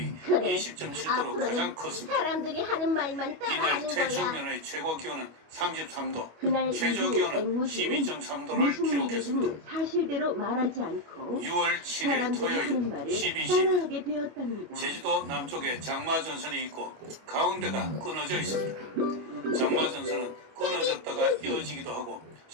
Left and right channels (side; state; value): left; late; 25 ms